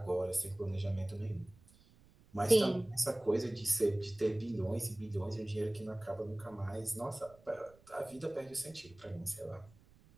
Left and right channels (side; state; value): right; noise; rumble, 27 dB below the sound